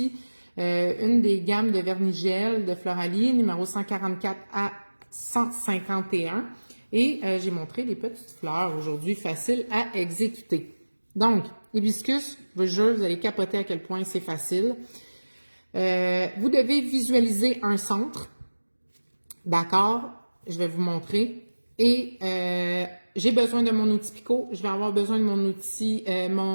une des gammes de vernis-gel de Floralie, numéro 144 à 151. Et j'ai montré des petites fleurs aujourd'hui, faciles à exécuter. Donc, hibiscus, je vous jure, vous allez capoter à quel point c'est facile. Vous devez visualiser un centre. D'accord? Je vais vous montrer. Et j'ai besoin de mon outil Picot. Je vais avoir besoin de mon outil,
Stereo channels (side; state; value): both; inverted; correlation -1.00